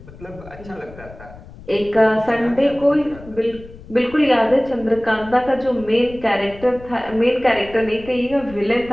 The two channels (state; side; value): noise; left; rumble, 18 dB below the sound